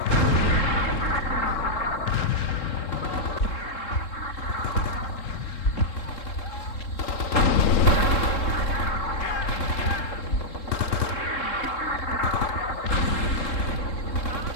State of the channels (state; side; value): late; right; 3.7 ms